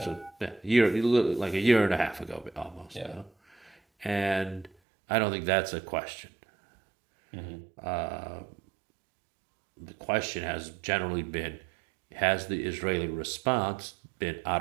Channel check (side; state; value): left; drops out; at 4.7 s